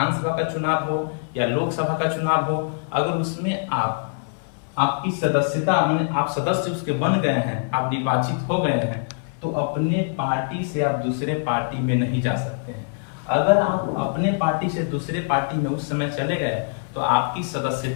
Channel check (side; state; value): right; silent; 63 dB below the other